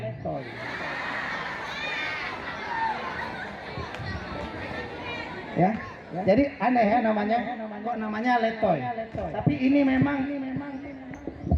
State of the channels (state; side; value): identical; both; correlation 1.00